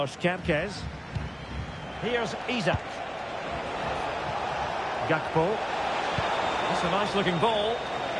Kempkes. Here's Isak. Gakpo. That's a nice looking ball.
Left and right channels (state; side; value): identical; both; correlation 1.00